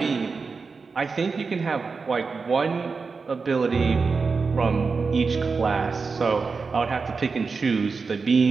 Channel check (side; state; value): left; quieter; 4.7 dB